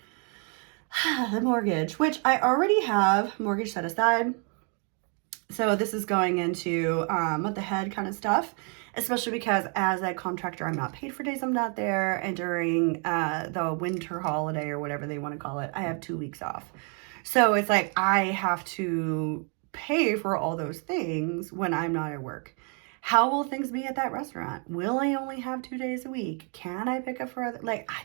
the mortgage, which I already have mortgage set aside. So this is going into month ahead kind of stuff, especially because as a contractor, I'm not paid for days I'm not there. And during the winter holiday or whatever they want to call it, I have 2 weeks off. So it's like I have to pay for all those things when I'm not at work. How will things be at that restaurant? Will I only have 2 days a week? Can I pick up for other, I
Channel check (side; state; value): left; quieter; 38.8 dB